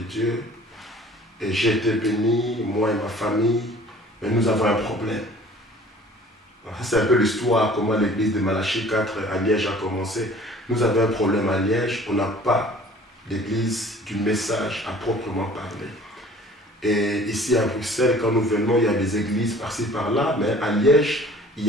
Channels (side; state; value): both; normal; correlation 0.50